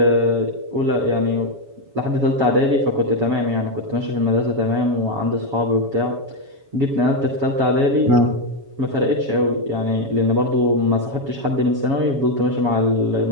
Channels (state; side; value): late; left; 7.2 ms